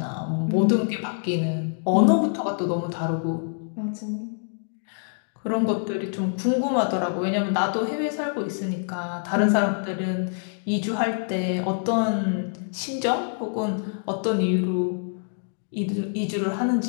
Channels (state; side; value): silent; right; digital silence